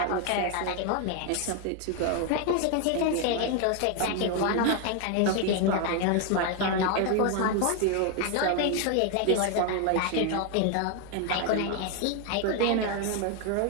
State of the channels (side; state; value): both; different; correlation 0.01